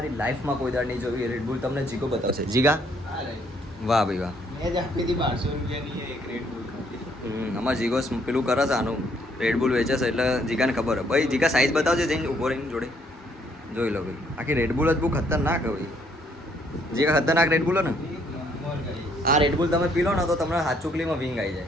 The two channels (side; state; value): both; normal; correlation 0.67